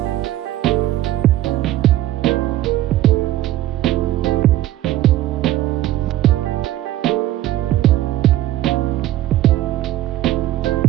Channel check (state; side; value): quieter; left; 14.3 dB